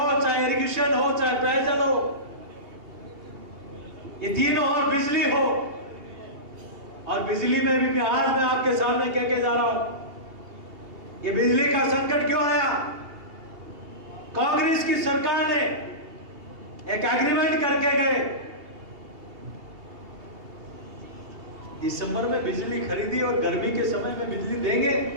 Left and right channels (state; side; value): late; left; 2.7 ms